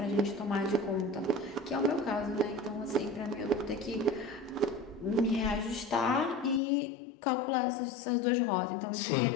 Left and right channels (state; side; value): drops out; right; at 6.6 s